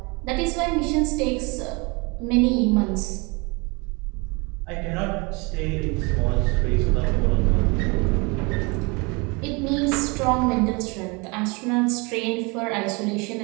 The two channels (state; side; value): quieter; left; 28.5 dB